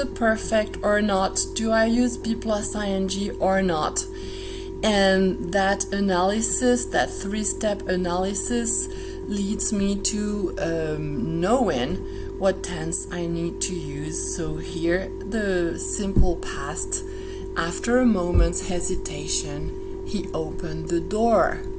perfect or not? Do I use be plus ing or not? And that analysis, that three-step analysis, leads me to knowing what tense I need to use. So here, the simple past. After a moment's hesitation, he opened the door.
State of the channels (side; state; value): both; identical; correlation 1.00